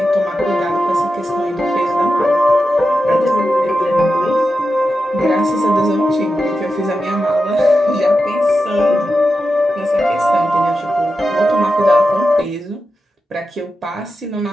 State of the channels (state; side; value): normal; both; correlation 0.90